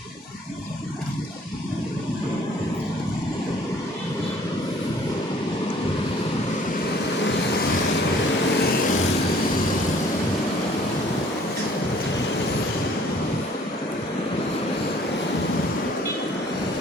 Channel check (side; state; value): both; normal; correlation 0.56